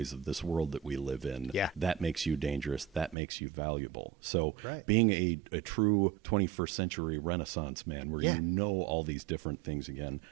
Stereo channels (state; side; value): drops out; left; at 3.2 s